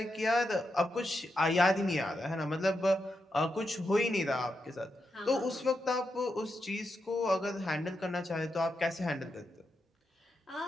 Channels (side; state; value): both; normal; correlation 0.85